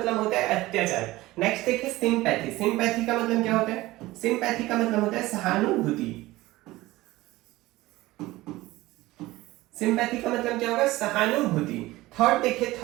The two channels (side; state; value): left; quieter; 18.5 dB